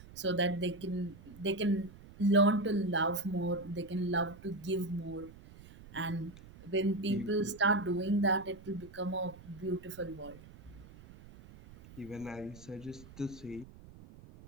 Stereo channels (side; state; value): right; noise; rumble, 19 dB below the sound